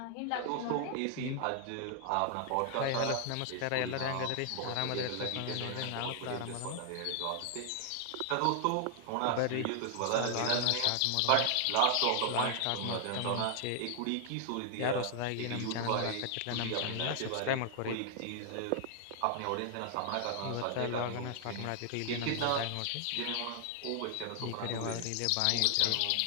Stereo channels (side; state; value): both; different; correlation 0.00